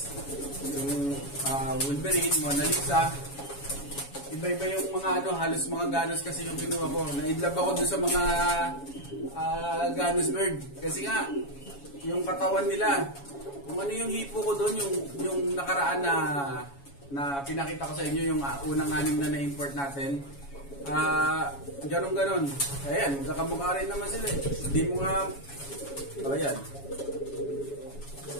yung Wolverine, Mona Lisa. Iba-iba yung mga halos mga ganos kasi yung kinuha ko. Na-inlove ako dun sa mga ganos bird. Kasi nga, yung katawan nila, kung ano yung hipo ko doon, yung nakaraan na pinakita ko sa inyo, yung unang 6 na na-import natin. Ganon-ganon. Ayan, magkakamukha rin naman sila. Hindi mo nga, ayan.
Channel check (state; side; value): late; right; 7.2 ms